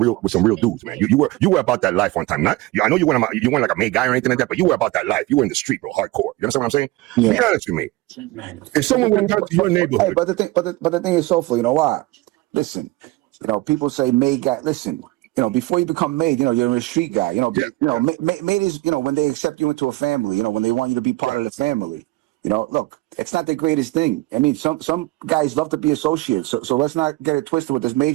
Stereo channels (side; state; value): left; quieter; 20.1 dB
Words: dudes, man. You were about that life one time. Not, I know you weren't like a made guy or anything like that, but you were about that life. You were in the street, bro, hardcore. You understand what I'm saying? Yeah. Be honest with me. If someone went down to your neighborhood, Hey, but the thing is, Soulful, you know why? Listen, you know, people say made guy. Listen, you know, before you become made, you know, you're a street guy. You know, made is, you know, when they accept you into a family. You know, when they want you to be part of the family. You know, look, it's not the greatest thing. I mean, some guys love to be associates. So let's not get it twisted with this